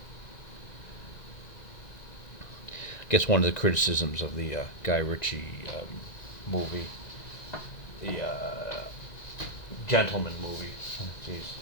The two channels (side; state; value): right; late; 2.0 ms